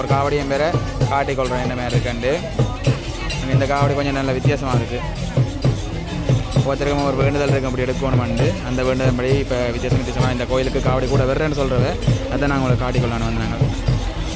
ஒரு காவடியும் பேரை காட்டிக்கொள்கிறேன் என்ன மாதிரி இருக்குண்டு. இந்த காவடி கொஞ்சம் நல்ல வித்தியாசமாக இருக்குது. ஒருத்தருக்கும் ஒரு வேண்டுதல் இருக்கும் அப்படி எடுக்கணுமெண்டு அந்த வேண்டுதல் படி இப்போ வித்தியாசமாக இந்த கோயிலுக்கு காவடி கூட வர்றேன்னு சொல்கிறத அதை நாங்கள் உங்களுக்கு காட்டிக்கொள்ளலான்னு வந்தாங்க.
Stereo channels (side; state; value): both; identical; correlation 1.00